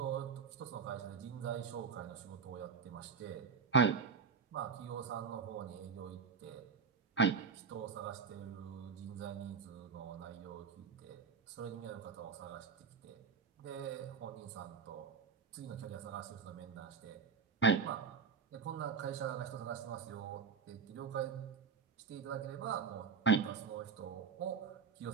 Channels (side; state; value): left; quieter; 5.7 dB